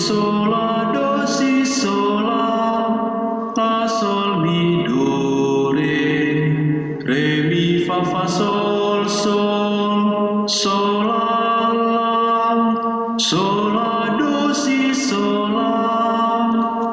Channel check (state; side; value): identical; both; correlation 1.00